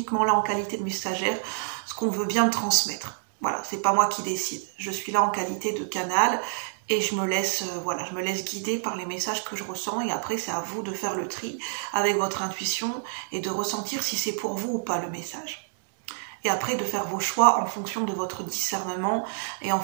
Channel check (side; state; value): left; silent; digital silence